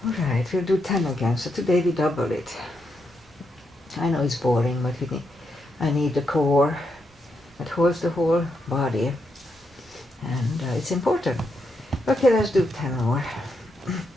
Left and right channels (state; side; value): normal; both; correlation 0.81